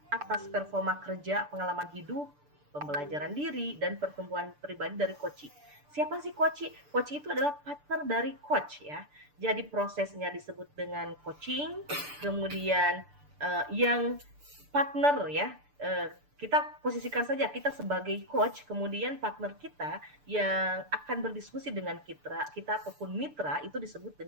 atas performa kerja, pengalaman hidup, pembelajaran diri dan pertumbuhan pribadi dari coach. Siapa sih coach? Coach itu adalah partner dari coach ya. Jadi prosesnya disebut dengan coaching. Kemudian yang partner ya, kita posisikan saja kita sebagai coach, kemudian partner kita yang akan berdiskusi dengan kita ataupun mitra itu disebut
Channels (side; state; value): left; late; 6.8 ms